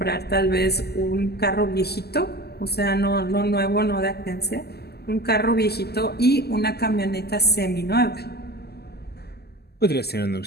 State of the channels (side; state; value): right; late; 0.46 ms